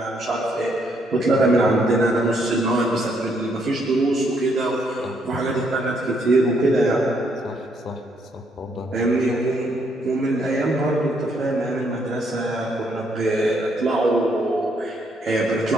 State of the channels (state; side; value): normal; both; correlation 0.72